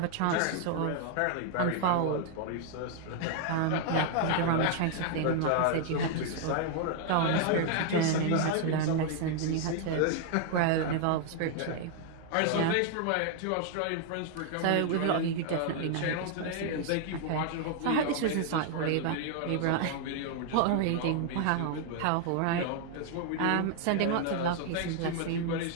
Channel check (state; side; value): different; both; correlation 0.00